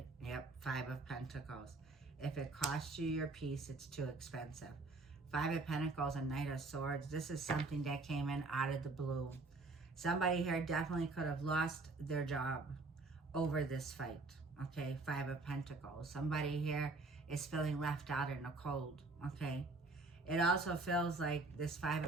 Yep, 5 of Pentacles. If it costs you your peace, it's too expensive. 5 of Pentacles and Knight of Swords. This is something that came in out of the blue. Somebody here definitely could have lost their job over this fight. Okay, 5 of Pentacles. Somebody here is feeling left out in the cold. Okay. It also feels like this 5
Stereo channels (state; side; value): quieter; left; 3.5 dB